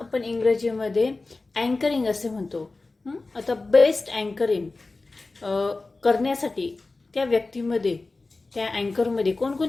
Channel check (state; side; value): quieter; right; 3.5 dB